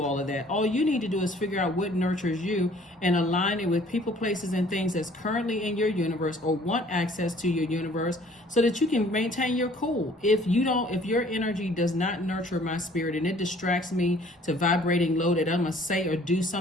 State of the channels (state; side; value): normal; both; correlation 0.55